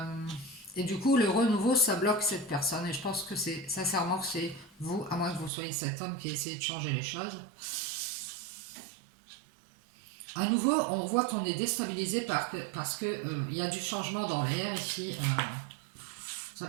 Et du coup, le renouveau, ça bloque cette personne. Et je pense que c'est sincèrement que c'est vous, à moins que vous soyez cet homme qui essaie de changer les choses. À nouveau, on voit qu'on est déstabilisé parce que il y a du changement dans l'air ici. Ça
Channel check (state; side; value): drops out; left; at 5.5 s